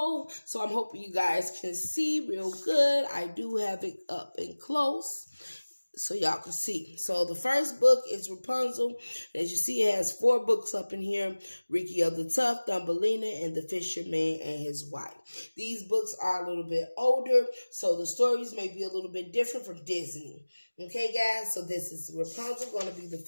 so I'm hoping you guys can see real good. I do have it up and close so y'all can see. So the first book is Rupunzel. As you see, it has 4 books up in here. Ricky of the Tough, Thumbelina, and the Fisherman and his wife. These books are a little bit older, so the stories may be a little bit different from Disney. Okay, guys? So this is Rupunzel going to be the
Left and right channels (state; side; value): inverted; both; correlation -1.00